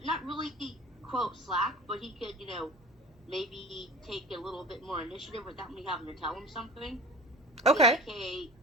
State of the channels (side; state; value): both; normal; correlation 0.37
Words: really quote slack, but he could, maybe take a little bit more initiative without me having to tell him something. Okay. Like, hey,